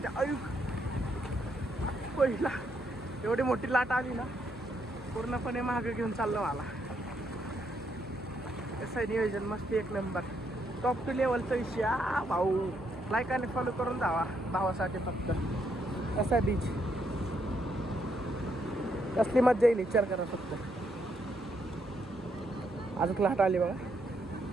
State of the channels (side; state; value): both; normal; correlation 0.76